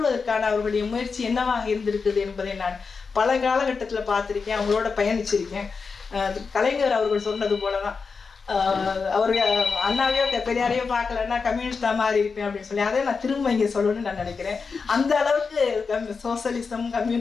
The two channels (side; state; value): right; quieter; 5.0 dB